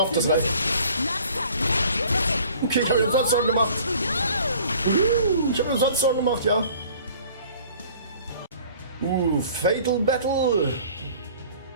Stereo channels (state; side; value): inverted; both; correlation -0.51